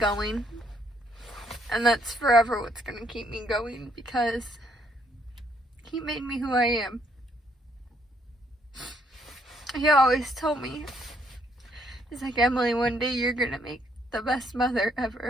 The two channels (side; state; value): both; normal; correlation 0.70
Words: And that's forever what's going to keep me going, because he made me who I am. He always told me, he's like, Emily, one day you're going to make the best mother